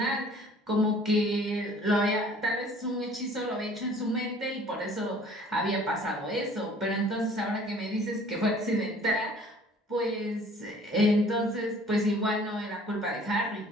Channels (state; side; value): normal; both; correlation 0.52